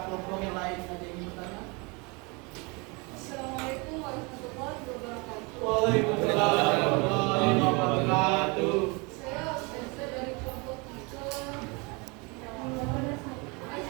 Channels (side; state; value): left; quieter; 29.0 dB